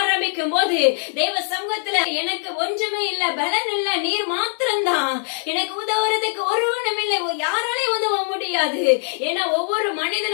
ஆரம்பிக்கும் போது தேவ சமூகத்துல எனக்கு ஒன்றுமே இல்ல, பலன் இல்ல, நீர் மாத்திரம்தான், எனக்கு உதவுறதுக்கு ஒருவனும் இல்லை, யாராலே உதவ முடியாது. ஏன்னா ஒவ்வொரு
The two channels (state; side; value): silent; right; 64 dB below the other